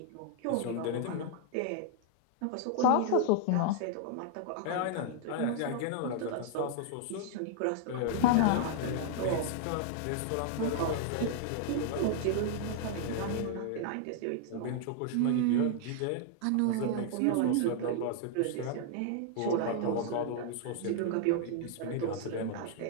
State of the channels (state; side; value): different; both; correlation 0.00